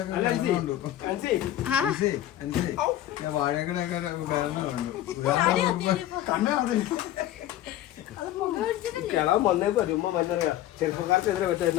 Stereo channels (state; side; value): quieter; right; 13.3 dB